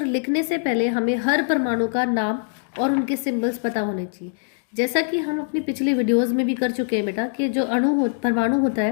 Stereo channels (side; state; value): right; silent; digital silence